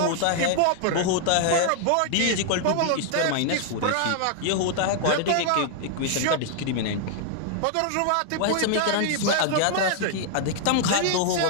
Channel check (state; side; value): different; both; correlation 0.00